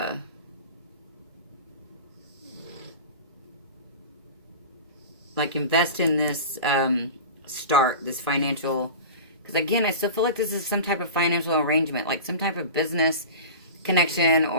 like invest in this, this financial, because again, I still feel like this is some type of financial arrangement, like some type of business connection,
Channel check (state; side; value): inverted; both; correlation -0.32